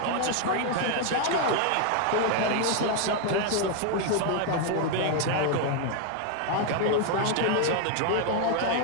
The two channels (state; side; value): different; both; correlation 0.00